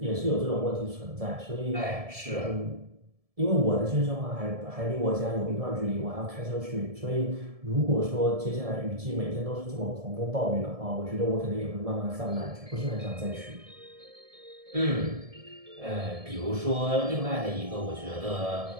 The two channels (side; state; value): left; late; 1.7 ms